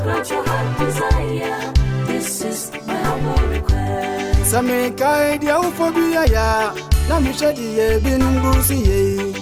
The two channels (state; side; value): identical; both; correlation 1.00